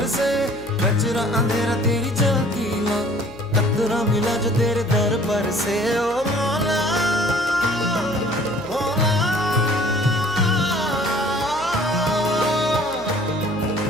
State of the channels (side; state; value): left; noise; hum, 18 dB below the sound